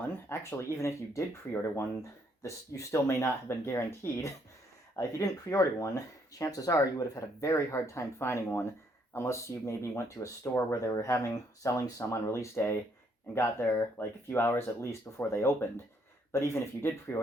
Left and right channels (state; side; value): normal; both; correlation 0.70